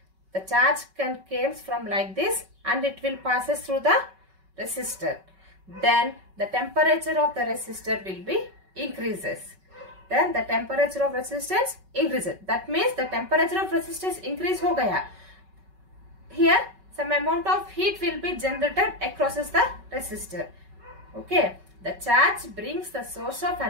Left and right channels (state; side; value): late; left; 5.3 ms